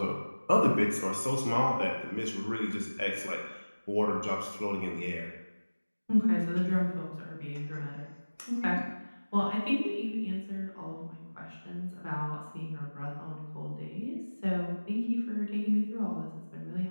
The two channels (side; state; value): both; inverted; correlation -1.00